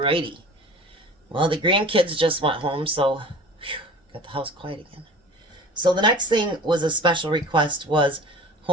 Well, the grandkids just went home, so got the house quiet again. So the next thing was a special request was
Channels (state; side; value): normal; both; correlation 0.41